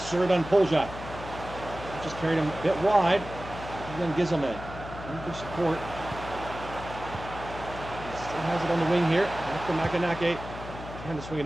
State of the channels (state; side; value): noise; left; hum, 12 dB below the sound